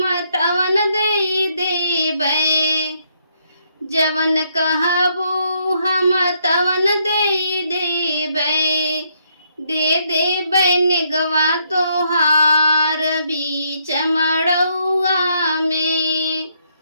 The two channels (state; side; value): inverted; both; correlation -0.73